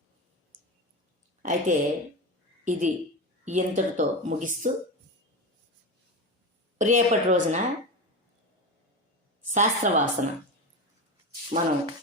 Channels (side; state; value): both; normal; correlation 0.21